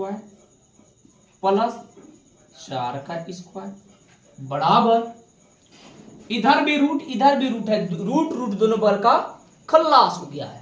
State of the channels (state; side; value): identical; both; correlation 1.00